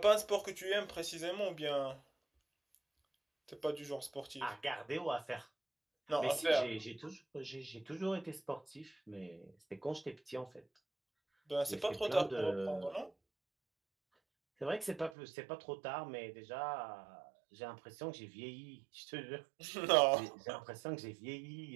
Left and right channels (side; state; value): left; drops out; at 15.1 s